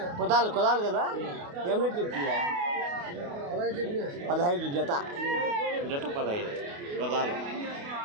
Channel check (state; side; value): late; left; 28 ms